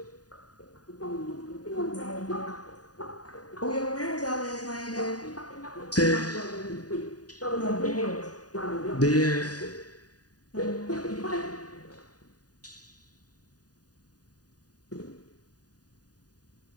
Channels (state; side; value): late; right; 0.68 ms